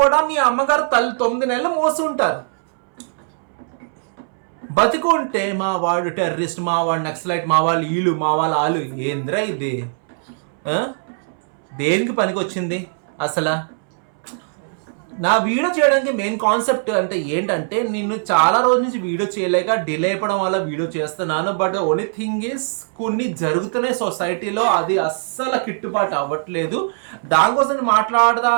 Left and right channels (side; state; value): left; silent; 66 dB below the other